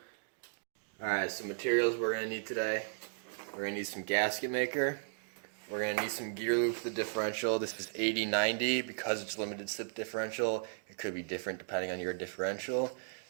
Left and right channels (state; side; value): silent; left; digital silence